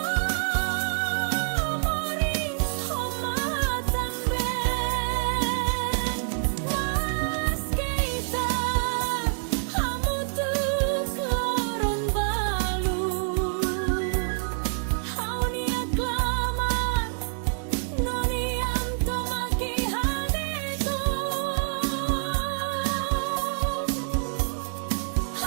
moris homatan ben Mas keita hamutu kloron balu Haunia klamar noniam tomaki hadeto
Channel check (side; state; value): left; silent; 58 dB below the other